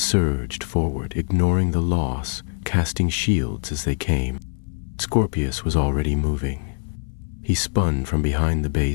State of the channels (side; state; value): right; silent; 63 dB below the other